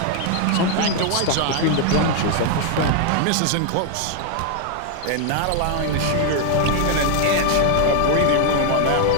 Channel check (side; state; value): both; different; correlation 0.00